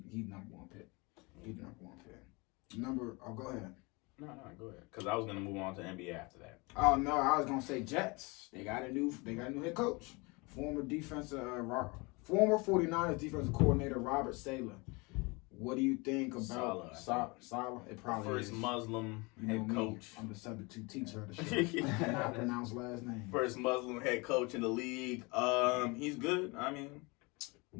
number 1 pick. He's number 1 pick. Go ahead. No, go ahead. Because I was gonna move on to NBA after that. Oh no, I was gonna say Jets. They got a new head coach. Former 49ers defensive coordinator Robert Saleh. What do you think about Saleh? It probably first is. Muslim head coach. I'm the substitute teacher of the show. Cannot pronounce last name. First Muslim head coach in the league. He's good. I mean,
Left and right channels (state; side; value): quieter; right; 27.1 dB